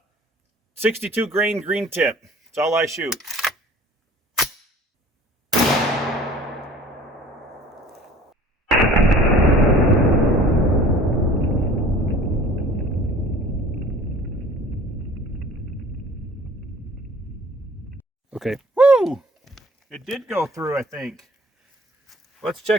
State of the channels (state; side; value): normal; both; correlation 0.48